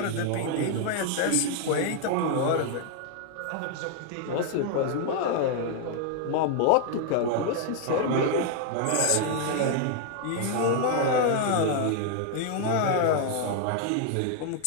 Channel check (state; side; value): different; both; correlation 0.00